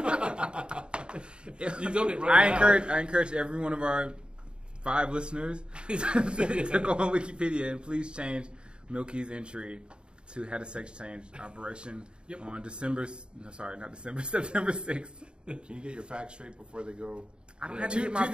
You've done it right now. I encourage every one of our 5 listeners to go on Wikipedia and please change Milky's entry to had a sex change operation on September 6th. Can you get your facts straight before they go? I don't have to get my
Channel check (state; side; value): late; left; 0.052 ms